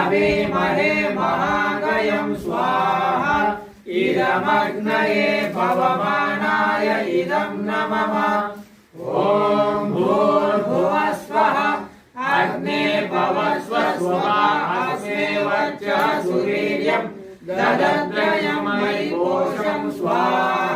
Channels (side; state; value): both; identical; correlation 1.00